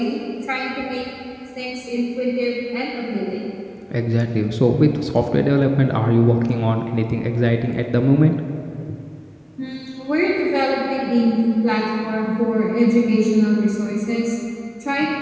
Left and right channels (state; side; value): identical; both; correlation 1.00